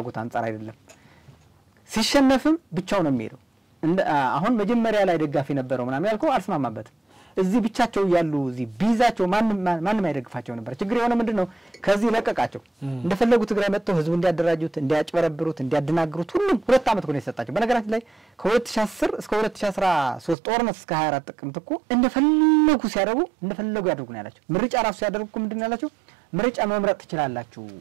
አንፃር አይደለም ሲሸነፍም ብቻው ነው የሚሄደው አሁን መጀመሪያ ላይ ደጋፊ ነበረው ምናምን ያልከው አልስማማበትም እዚህ ብቻቸው ያሉ እዚህ ቢዛቸው ማንም አይደግፋቸው ነበር ችግር የሆነ ምንድነው ከዚህ ለቀቃቸው እንደፈለጉ ትግራይ መጥተው ህዝቡ እንዲያደራጁት እንዲያጭበረብሩት እንዲያደናግሩት ሁሉም 2 አመት ሆነ የሰጣቸው በነገራችን ላይ ከ2010 እስከ 2013 ጦርነት እስከ 24 ጥቅምት እኮ እንደፈለጉ ሲያደርጉ እንደፈለጉ ያደርጉ ነው ያላቸው ምርጫ ራሱ ሲያደርጉ ምንድነው ያላቸው ምርጫ መምረጥ ትችላላችሁ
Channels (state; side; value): drops out; left; at 20.4 s